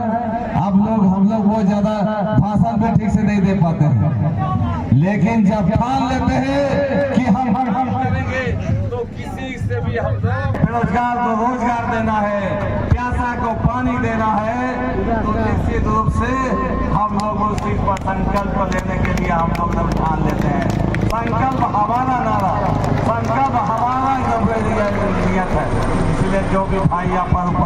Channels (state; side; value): identical; both; correlation 1.00